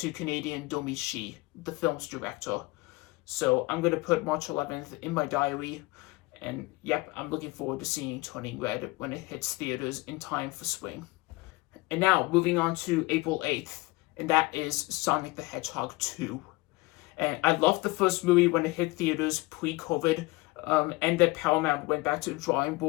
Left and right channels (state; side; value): quieter; right; 22.7 dB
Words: Canadian Domi Shi, the film's director. So I'm going to put March 11th in my diary. And yep, I'm looking forward to seeing Turning Red when it hits theaters in time for spring. And now, moving on to April 8th. And that is Sonic the Hedgehog 2. And I loved the first movie when it hit theaters pre-COVID, and that Paramount went back to the drawing